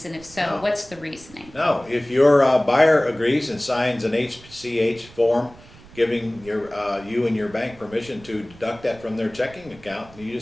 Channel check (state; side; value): noise; right; rumble, 22 dB below the sound